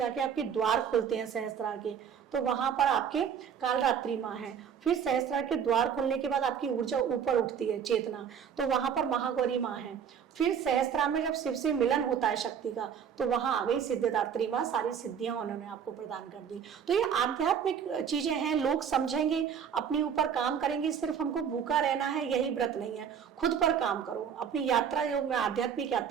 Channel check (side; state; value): left; quieter; 7.8 dB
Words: आपके द्वार खोलते हैं सहस्त्रार के, तो वहां पर आपके कालरात्रि माँ है। फिर सहस्त्रार के द्वार खोलने के बाद आपकी ऊर्जा ऊपर उठती है, चेतना, तो वहां पर महागौरी माँ है। फिर सहस्त्रार में जब शिव से मिलन होता है शक्ति का, तो वहां आ गई सिद्धदात्री माँ, सारी सिद्धियां उन्होंने आपको प्रदान कर दी। तो ये आध्यात्मिक चीजें हैं, लोग समझेंगे, अपने ऊपर काम करेंगे। सिर्फ हमको भूखा रहना है यही व्रत नहीं है, खुद पर काम करो। अपनी यात्रा, जो मैं आध्यात्मिक